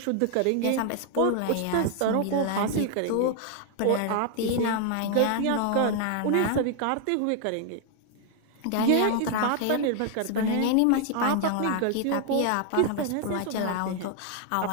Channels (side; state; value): both; different; correlation 0.00